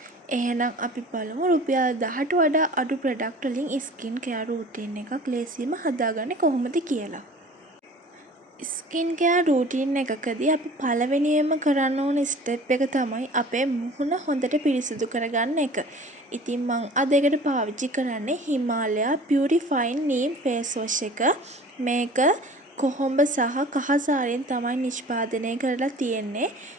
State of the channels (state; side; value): normal; both; correlation 0.44